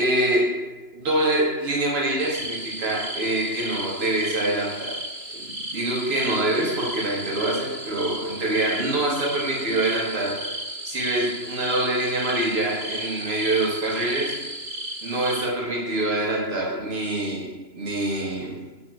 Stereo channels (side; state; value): left; late; 3.0 ms